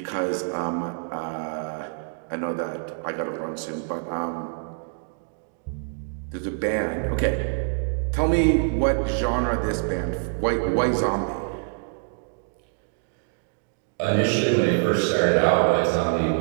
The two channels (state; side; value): silent; left; digital silence